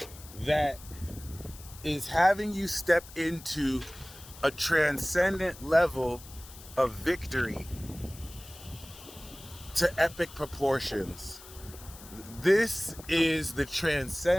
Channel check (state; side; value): noise; left; hiss, 18 dB below the sound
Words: that is having you step into a transcendent level of victory to epic proportions. This is the